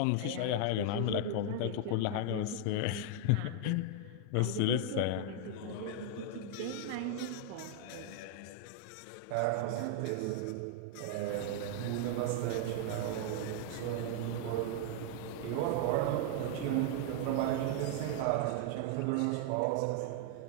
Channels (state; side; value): different; both; correlation 0.00